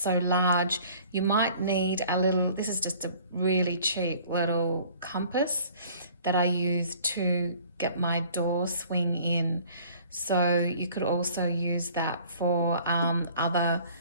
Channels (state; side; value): inverted; both; correlation -0.52